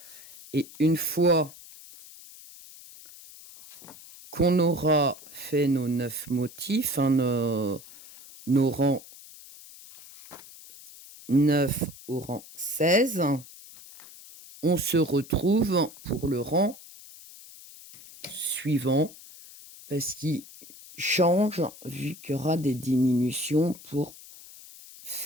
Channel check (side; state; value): left; noise; hiss, 19 dB below the sound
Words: Et une fois qu'on aura fait nos 9 motifs, nos rangs 9 au rang 16, on se retrouve pour le rang suivant, parce qu'il change vu qu'il y aura des diminutions pour